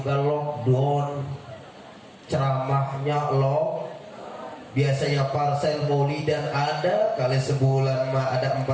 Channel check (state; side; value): identical; both; correlation 1.00